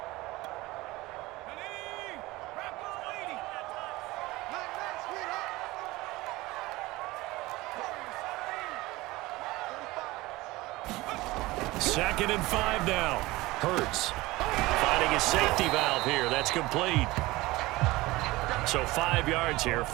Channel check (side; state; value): left; quieter; 20.1 dB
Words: Second and 5 now. Hurts finding his safety valve here. That's complete. So 5 yards here,